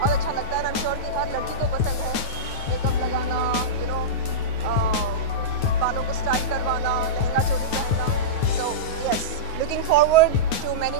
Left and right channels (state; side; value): late; right; 9.4 ms